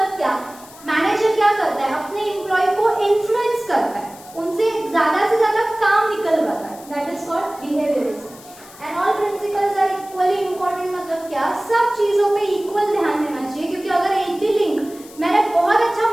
क्या? मैनेजर क्या करता है? अपने एम्प्लॉय को इन्फ्लुएंस करता है, उनसे ज्यादा से ज्यादा काम निकलवाता है, that is called behaviourism. And all principles are equally important मतलब क्या? सब चीजों पे इक्वल ध्यान देना चाहिए, क्योंकि अगर एक भी लिंक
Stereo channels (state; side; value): noise; left; hiss, 21 dB below the sound